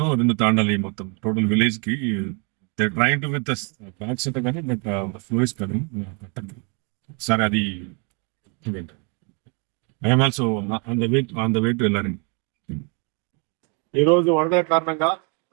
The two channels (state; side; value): quieter; left; 34.8 dB